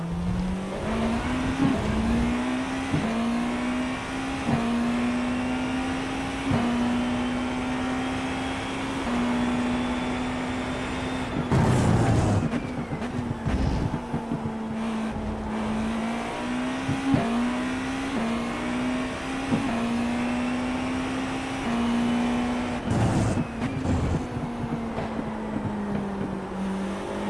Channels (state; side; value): identical; both; correlation 1.00